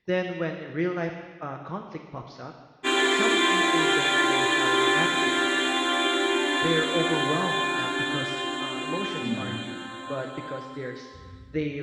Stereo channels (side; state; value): both; identical; correlation 1.00